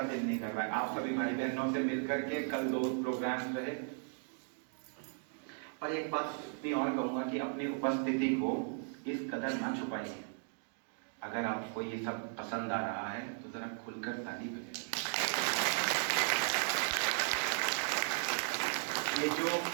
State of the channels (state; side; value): silent; left; 54 dB below the other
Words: दिल नहीं कर रहा है। आप सभी भाई बहनों से मिलकर के कल 2 प्रोग्राम रहे। पर एक बात मैं और कहूंगा कि अपनी उपस्थिति को इस कदर ना छुपाइए। अगर आपको ये सब पसंद आ रहा है तो जरा खुलकर ताली बजाइए।